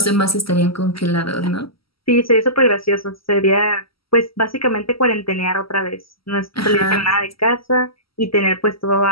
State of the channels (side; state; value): right; late; 0.75 ms